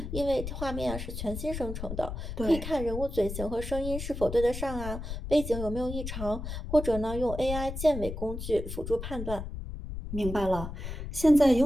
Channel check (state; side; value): noise; left; rumble, 7 dB below the sound